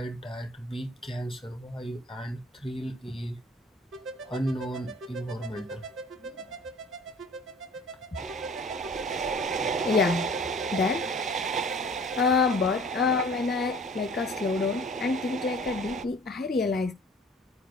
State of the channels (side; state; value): both; normal; correlation 0.48